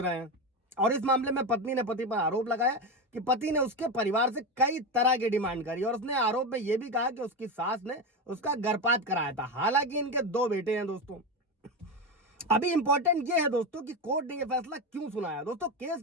हैं और इस मामले में पत्नी ने पति पर आरोप लगाया कि पति ने उसके परिवार से कई तरह की डिमांड करी और उसने आरोप में यह भी कहा कि उसकी सास ने उसका गर्भपात कराया था। हालांकि इनके 2 बेटे हैं। दोस्तों अभी इंपॉर्टेंट ये है दोस्तों कि कोर्ट ने यह फैसला क्यों सुनाया। दोस्तों केस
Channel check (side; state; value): both; normal; correlation 0.16